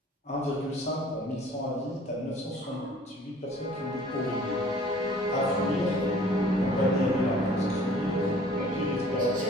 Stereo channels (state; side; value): normal; both; correlation 0.52